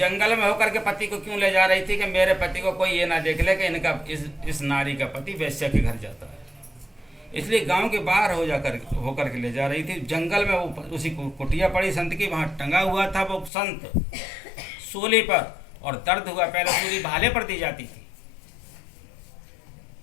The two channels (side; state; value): right; drops out; at 13.5 s